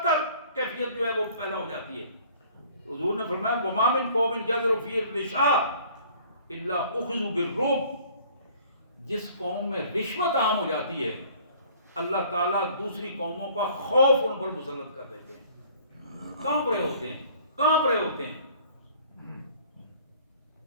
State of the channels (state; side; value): inverted; both; correlation -0.53